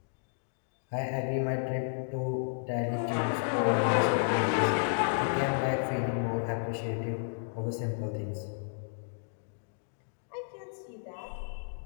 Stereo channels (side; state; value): right; silent; digital silence